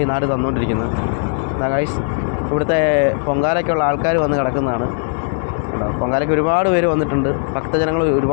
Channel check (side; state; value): right; silent; digital silence